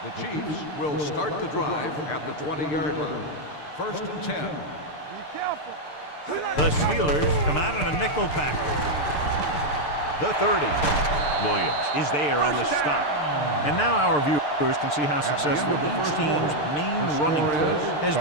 The Chiefs will start the drive at the 20-yard line. 1st and 10. Be careful. The Steelers come out in a nickel package. The 30. Williams is there on the stop. And now our viewers can see how successful each team's main running play has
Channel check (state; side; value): late; right; 6.7 ms